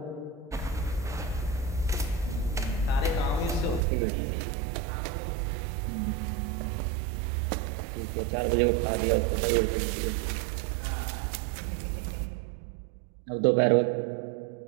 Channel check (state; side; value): drops out; left; at 3.8 s